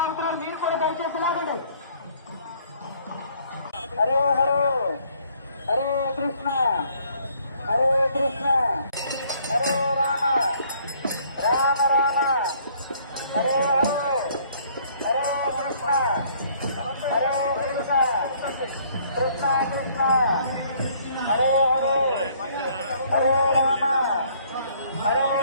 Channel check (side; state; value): both; inverted; correlation -0.61